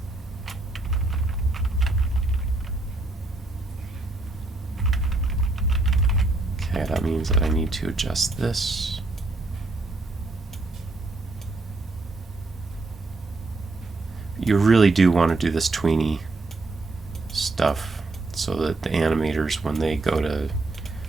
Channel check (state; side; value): quieter; left; 3.2 dB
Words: Okay, that means that I need to adjust this. You really do want to do this tweeny stuff so that the animators, when they go to